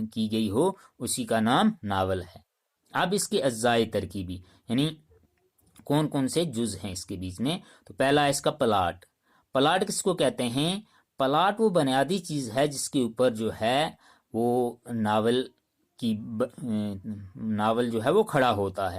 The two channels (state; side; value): identical; both; correlation 1.00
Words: کی گئی ہو، اسی کا نام ناول ہے۔ اب اس کے اجزاء ترکیبی، یعنی کون کون سے جز ہیں اس کے بیچ میں، تو پہلا ہے اس کا پلاٹ۔ پلاٹ کس کو کہتے ہیں؟ پلاٹ وہ بنیادی چیز ہے جس کے اوپر جو ہے وہ ناول جو ہے وہ کھڑا ہوتا